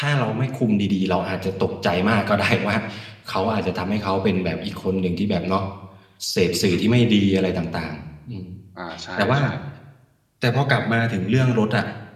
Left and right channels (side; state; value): both; identical; correlation 1.00